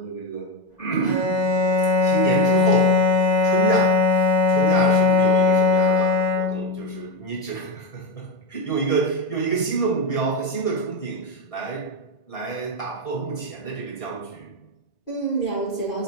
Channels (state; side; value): late; right; 1.6 ms